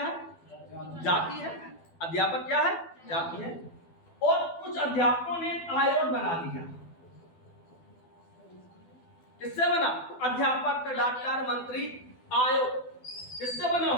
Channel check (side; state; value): right; late; 12 ms